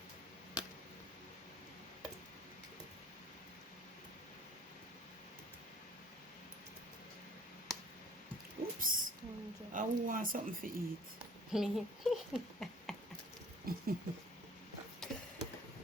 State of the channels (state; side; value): normal; both; correlation 0.52